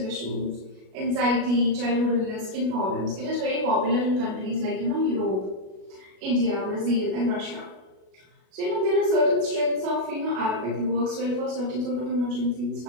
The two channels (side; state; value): left; late; 37 ms